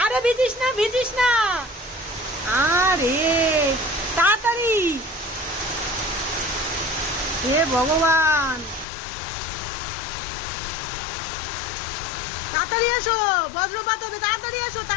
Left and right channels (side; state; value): right; drops out; at 8.8 s